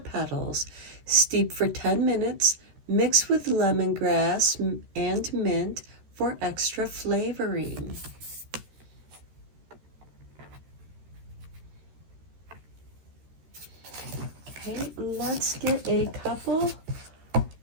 petals, steep for 10 minutes, mix with lemongrass and mint for extra flavoring. Okay, let's get a couple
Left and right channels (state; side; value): late; left; 13 ms